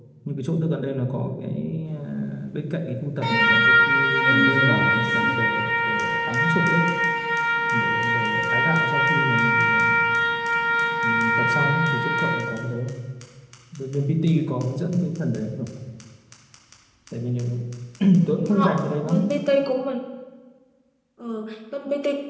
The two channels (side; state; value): both; identical; correlation 1.00